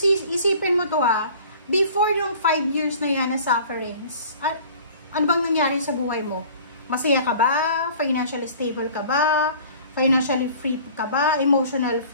mo to before yung 5 years na yan na sufferings, ano bang nangyari sa buhay mo? Masaya ka ba? Financially stable ka ba? Financially free ka ba? Emotional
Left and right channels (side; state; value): both; inverted; correlation -0.47